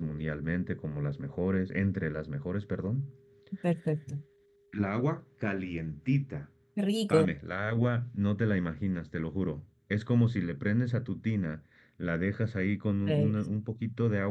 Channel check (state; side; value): identical; both; correlation 1.00